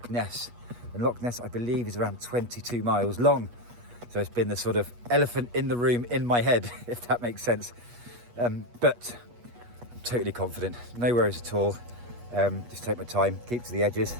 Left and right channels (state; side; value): late; left; 8.3 ms